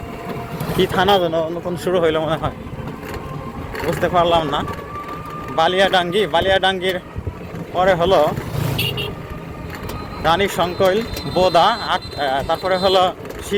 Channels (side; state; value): both; identical; correlation 1.00